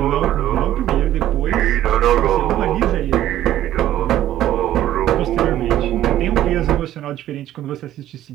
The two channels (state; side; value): quieter; left; 12.9 dB